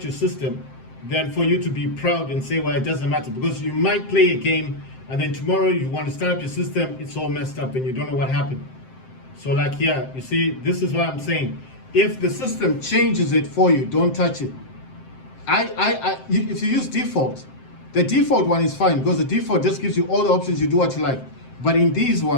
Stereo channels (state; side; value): late; right; 7.7 ms